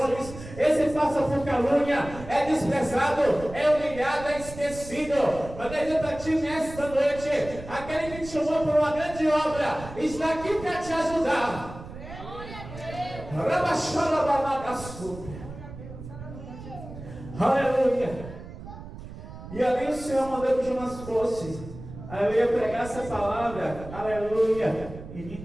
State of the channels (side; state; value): right; noise; rumble, 13 dB below the sound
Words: esse passa por calúnia, é desprezado, é humilhado, é esquecido. Mas eu para ti nesta noite, aquele que te chamou por uma grande obra, está aqui para te ajudar. Aleluia. E ali o Senhor mandou que Jonas fosse. Aí eu ia pregar essa palavra. Aleluia. E